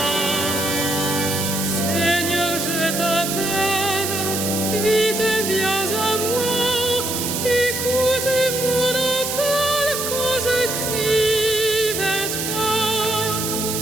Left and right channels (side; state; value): right; noise; hiss, 2 dB below the sound